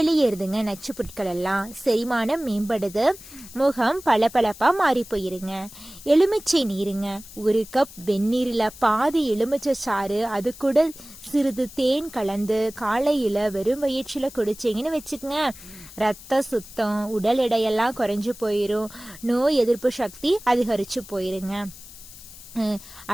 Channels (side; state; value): left; noise; hiss, 17 dB below the sound